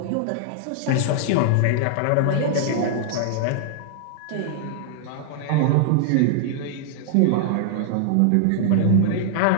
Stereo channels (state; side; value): different; both; correlation -0.01